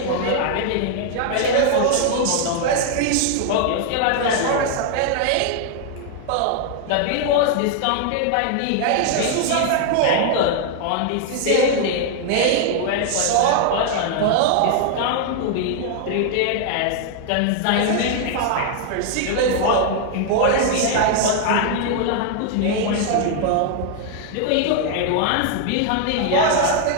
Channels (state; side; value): different; both; correlation 0.00